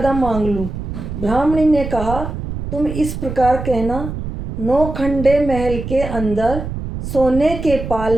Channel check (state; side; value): noise; right; rumble, 7 dB below the sound